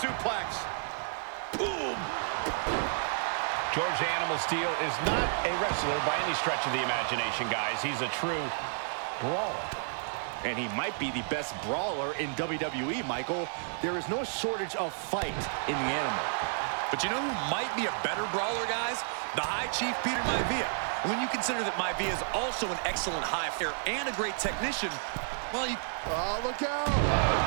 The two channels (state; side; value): silent; left; 57 dB below the other